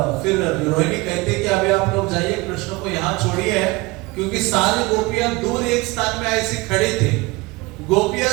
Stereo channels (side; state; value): left; quieter; 23.5 dB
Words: फिर रोहिणी कहते कि अभी आप लोग जाइए, कृष्ण को यहाँ छोड़िए, क्योंकि सारी गोपियां दूर एक स्थान में ऐसे खड़े थे। गोपियां